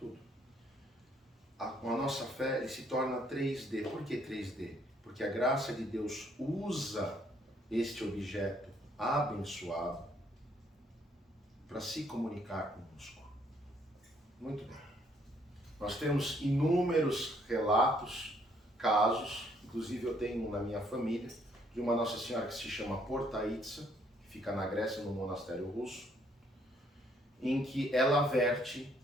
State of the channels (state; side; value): normal; both; correlation 0.67